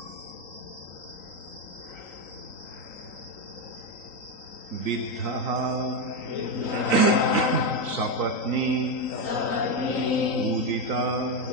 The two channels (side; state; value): right; late; 3.9 ms